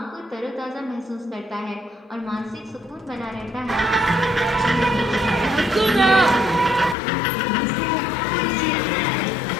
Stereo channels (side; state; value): right; drops out; at 7.0 s